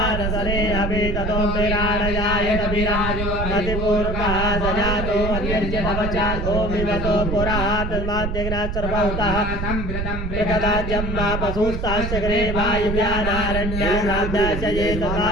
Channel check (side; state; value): right; noise; rumble, 3 dB below the sound